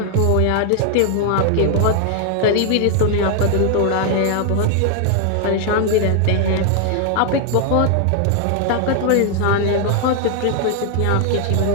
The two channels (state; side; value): different; both; correlation 0.00